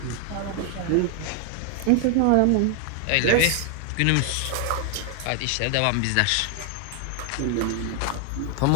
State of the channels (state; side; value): different; both; correlation 0.00